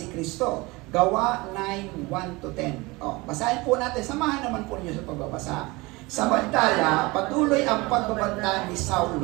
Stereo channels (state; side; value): quieter; left; 23.4 dB